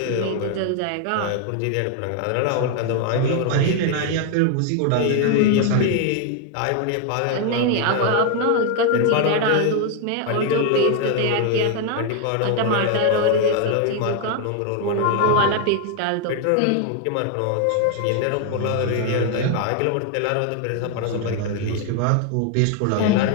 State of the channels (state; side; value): different; both; correlation 0.01